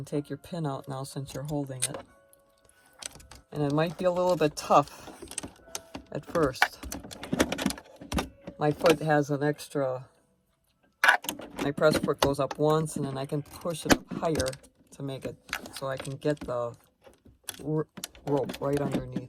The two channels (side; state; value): both; identical; correlation 1.00